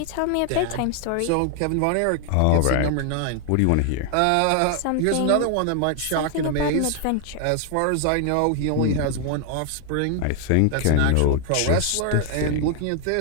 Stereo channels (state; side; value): different; both; correlation 0.00